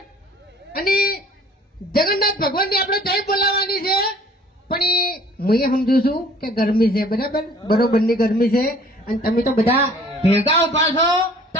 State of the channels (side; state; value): both; normal; correlation 0.53